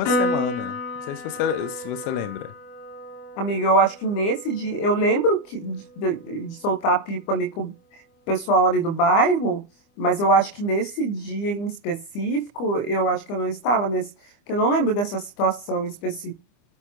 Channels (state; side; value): late; right; 25 ms